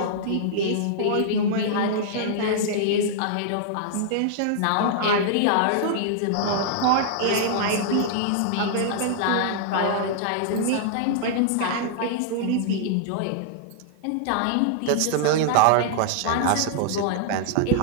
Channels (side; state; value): both; different; correlation -0.01